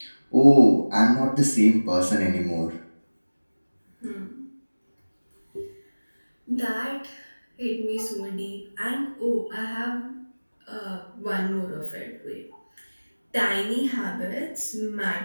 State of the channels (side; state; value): both; inverted; correlation -1.00